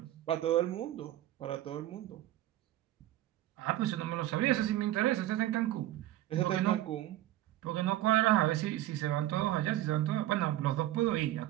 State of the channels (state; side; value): quieter; left; 14.3 dB